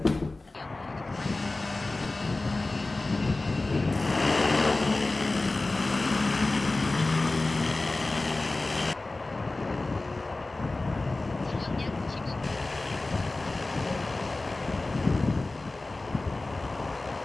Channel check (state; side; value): quieter; right; 3.1 dB